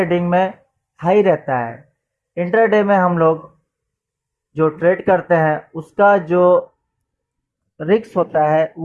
में हाई रहता है। इंट्राडे में हम लोग जो ट्रेड करते हैं उसका जो रिस्क होता है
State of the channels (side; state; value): both; identical; correlation 1.00